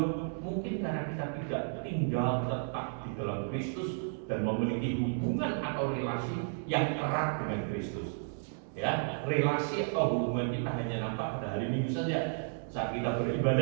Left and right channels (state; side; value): silent; left; 56 dB below the other